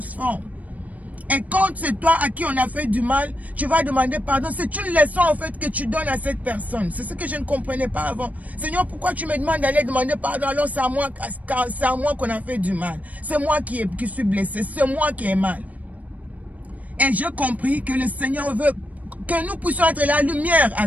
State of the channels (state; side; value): late; left; 0.072 ms